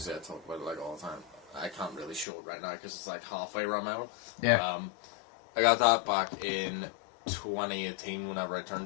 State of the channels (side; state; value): right; drops out; at 2.2 s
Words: I talk about it like all the time. I can't really show it right now because it's like halfway around my arm. Yeah. I got that back in 2018 whenever I